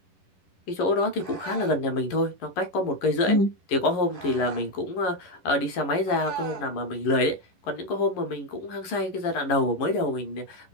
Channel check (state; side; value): late; right; 11 ms